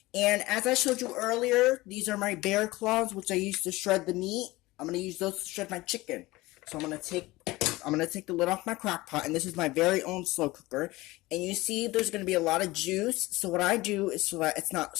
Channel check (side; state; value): right; quieter; 19.8 dB